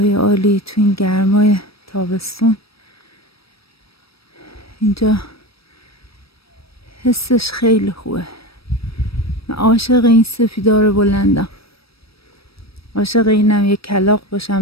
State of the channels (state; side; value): late; right; 0.76 ms